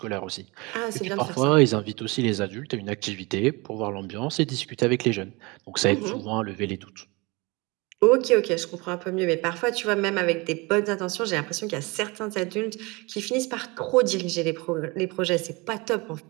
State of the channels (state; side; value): quieter; left; 25.8 dB